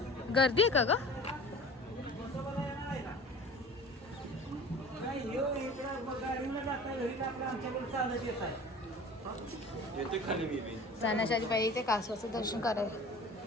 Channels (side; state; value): both; normal; correlation 0.42